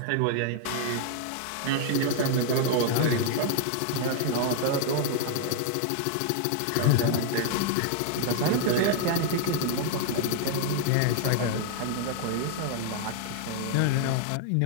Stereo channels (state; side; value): different; both; correlation 0.00